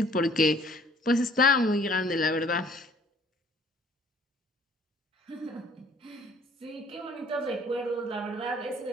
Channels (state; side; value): normal; both; correlation 0.58